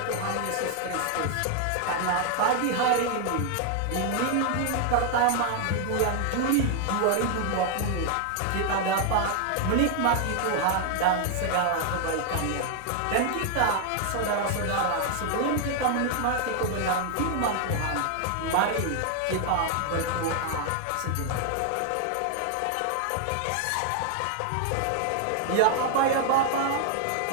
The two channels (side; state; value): both; different; correlation 0.00